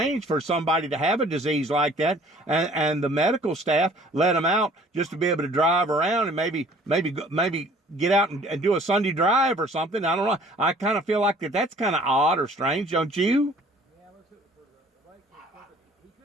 for somebody to have a disease like that, and the medical staff let him out just to be able to drive around and maybe get out and do a Sunday drive or something. I don't know. I kind of feel like that's kind of odd or strange, don't you? Yeah, let's hit it for the right case.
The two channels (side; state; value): both; normal; correlation 0.53